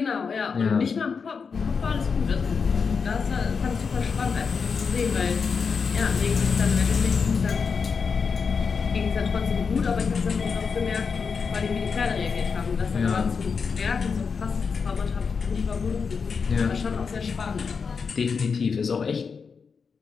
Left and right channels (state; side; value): quieter; right; 5.6 dB